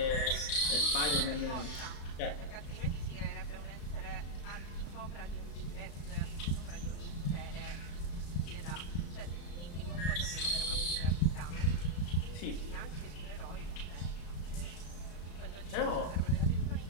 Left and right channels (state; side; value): late; right; 35 ms